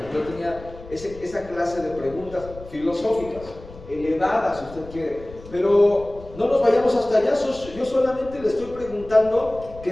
Yo tenía esa clase de preguntas filosóficas, elevadas si usted quiere, pero no nos vayamos hasta allá. Yo solamente le estoy preguntando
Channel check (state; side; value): noise; left; rumble, 17 dB below the sound